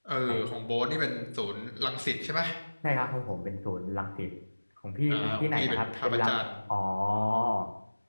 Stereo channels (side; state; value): both; inverted; correlation -1.00